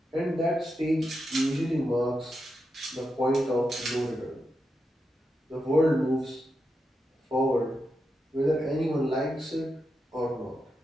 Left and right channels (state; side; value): normal; both; correlation 0.86